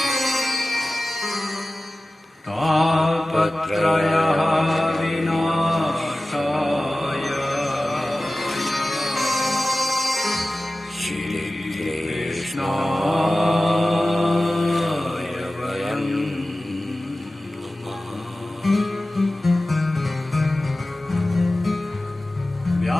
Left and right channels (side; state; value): both; normal; correlation 0.96